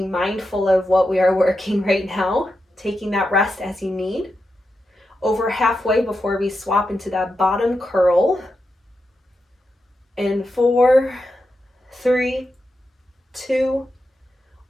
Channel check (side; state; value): both; normal; correlation 0.88